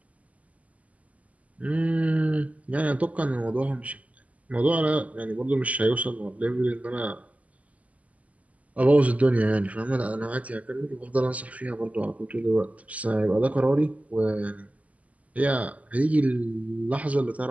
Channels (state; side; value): late; left; 0.071 ms